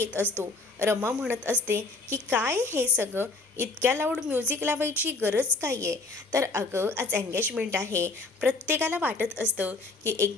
असतो. रमा म्हणत असते की काय हे सगळं, इतक्या लाऊड म्युझिक लावायची गरज काय आहे. तर अगं आज एंगेजमेंट आहे, प्रत्येकाला वाटत असतं की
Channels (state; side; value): quieter; right; 3.7 dB